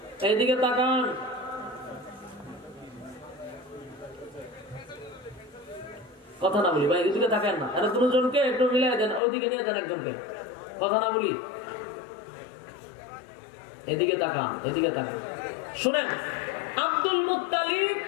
এইদিকে তাকান। কথা না বলি ভাই, এদিকে থাকেন না, এরা দুজনকে একটু মিলাই দেন, ওইদিকে নিয়ে যান একজনকে, কথা না বলি, এদিকে তাকান, এদিকে তাকান। শুনেন, আব্দুল মুত্তালিব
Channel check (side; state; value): right; drops out; at 9.2 s